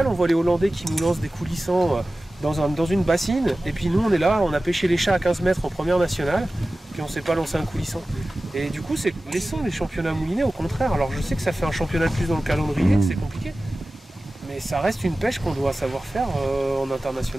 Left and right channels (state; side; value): normal; both; correlation 0.96